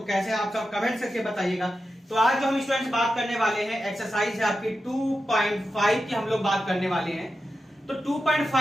कैसे आप सब कमेंट करके बताइएगा। तो आज जो हम स्टूडेंट्स बात करने वाले हैं एक्सरसाइज है आपकी 2.5 की हम लोग बात करने वाले हैं। तो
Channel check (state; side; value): normal; both; correlation 0.90